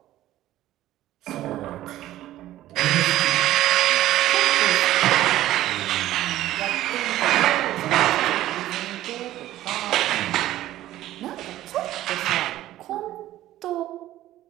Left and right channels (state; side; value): quieter; left; 14.3 dB